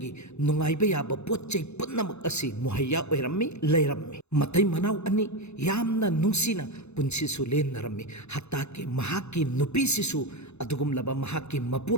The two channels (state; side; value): late; right; 0.81 ms